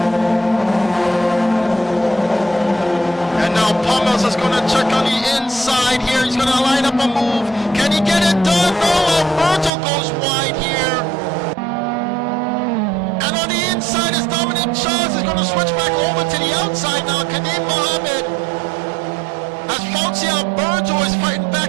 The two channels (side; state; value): left; drops out; at 9.7 s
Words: Charles is going to check on the inside here. He's going to line up a move. Can he get it done? No, Alberto goes wide here. And on the inside is Dominic Charles. Is going to switch back over to the outside now. Kadim Mohammed. As Fauci Alberto is fighting